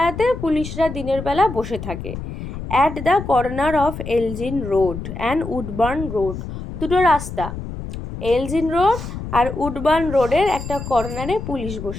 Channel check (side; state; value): left; noise; rumble, 8 dB below the sound